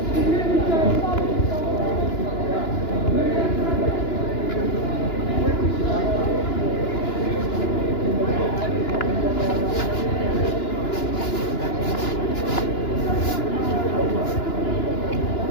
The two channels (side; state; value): right; late; 2.9 ms